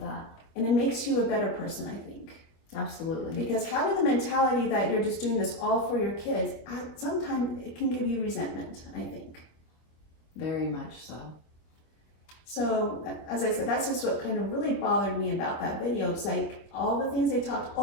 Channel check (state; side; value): late; right; 25 ms